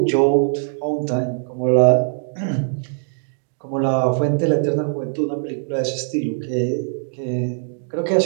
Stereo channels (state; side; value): silent; left; digital silence